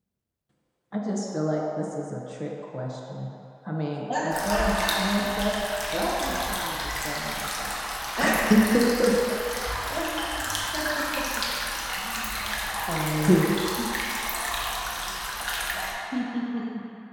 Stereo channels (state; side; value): identical; both; correlation 1.00